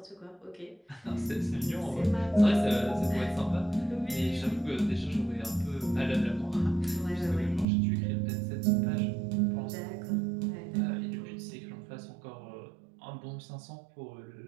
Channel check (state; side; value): drops out; left; at 7.7 s